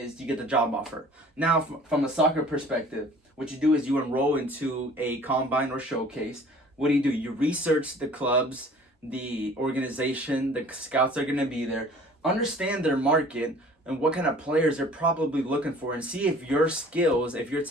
you get the job offer. Now, from a soccer perspective, what you do is you enroll into a combine or showcase. What do? You research the clubs, the organization, the scouts are going to be there, understand their market and what kind of players they're probably looking for, and see if your skills, if your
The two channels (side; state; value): both; normal; correlation 0.49